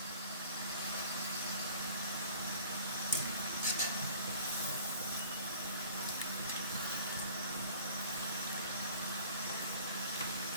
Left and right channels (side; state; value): both; inverted; correlation -0.47